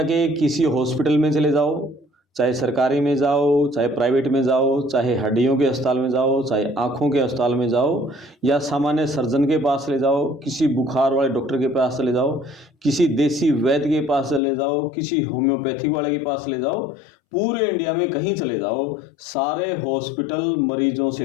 के किसी हॉस्पिटल में चले जाओ, चाहे सरकारी में जाओ, चाहे प्राइवेट में जाओ, चाहे हड्डियों के अस्पताल में जाओ, चाहे आँखों के अस्पताल में जाओ, या सामान्य सर्जन के पास चले जाओ, किसी बुखार वाले डॉक्टर के पास चले जाओ, किसी देसी वैद्य के पास चले जाओ, किसी होम्योपैथिक वाले के पास चले जाओ, पूरे इंडिया में कहीं चले जाओ, सारे हॉस्पिटल मरीजों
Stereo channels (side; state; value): right; drops out; at 14.4 s